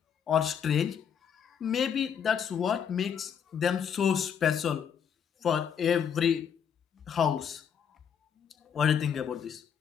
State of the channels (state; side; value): quieter; right; 7.8 dB